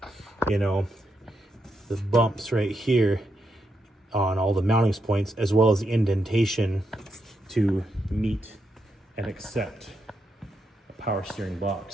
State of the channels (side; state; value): both; normal; correlation 0.82